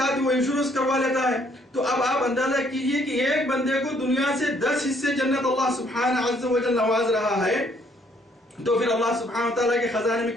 وہ انشورنس کروا لیتا ہے. تو اب آپ اندازہ کیجئے کہ ایک بندے کو دنیا سے 10 حصے جنت اللہ سبحانہ عز و جل نواز رہا ہے، تو پھر اللہ سبحانہ و تعالیٰ کے خزانے میں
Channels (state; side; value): normal; both; correlation 0.66